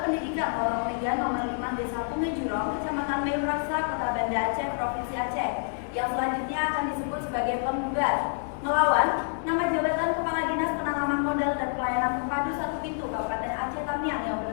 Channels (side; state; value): right; silent; 60 dB below the other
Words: Pendidikan Lorong 3 nomor 5 Desa Punge Jurong, Kecamatan Meuraksa, Kota Banda Aceh, Provinsi Aceh. Yang selanjutnya akan disebut sebagai penggugat melawan nama jabatan Kepala Dinas Penanaman Modal dan Pelayanan Terpadu 1 Pintu Kabupaten Aceh Tamiang yang